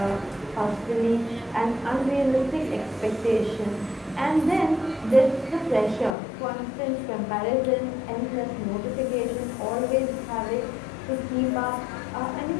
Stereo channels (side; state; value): right; drops out; at 6.1 s